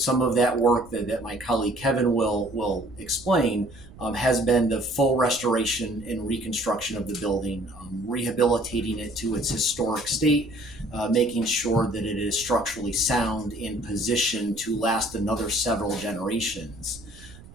of that work that my colleague Kevin will explain has been the full restoration and reconstruction of the building, rehabilitating it to its historic state, making sure that it is structurally sound and positioned to last another several generations.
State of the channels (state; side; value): noise; right; rumble, 20 dB below the sound